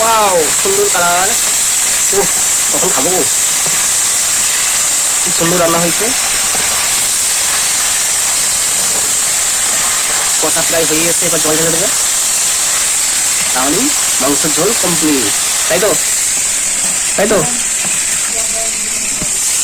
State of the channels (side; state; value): both; identical; correlation 1.00